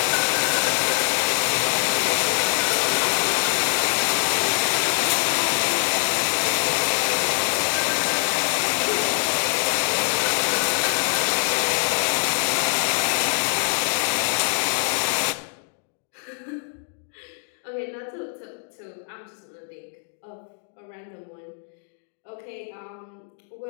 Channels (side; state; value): right; silent; digital silence